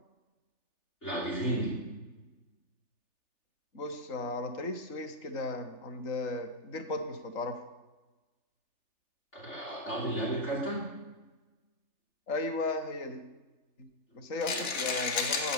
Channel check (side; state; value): right; late; 3.4 ms